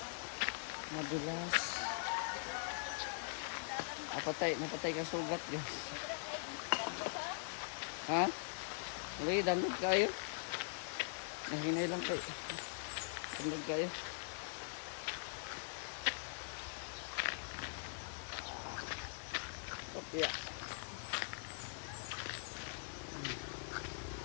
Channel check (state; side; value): silent; right; digital silence